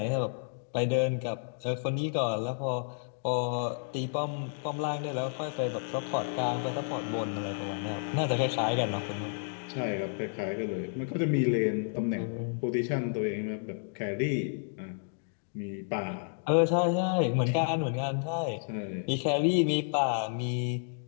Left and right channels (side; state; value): right; silent; digital silence